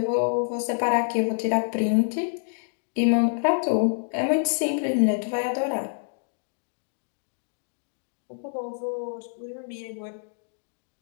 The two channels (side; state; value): right; silent; digital silence